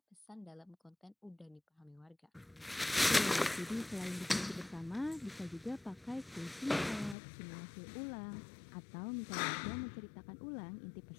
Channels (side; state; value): right; drops out; at 7.2 s